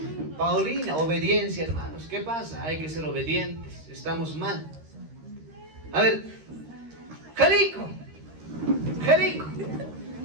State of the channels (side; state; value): left; late; 13 ms